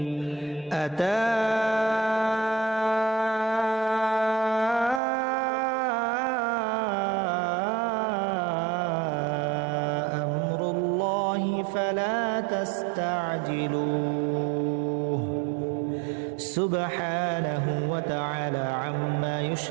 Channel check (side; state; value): left; drops out; at 5.0 s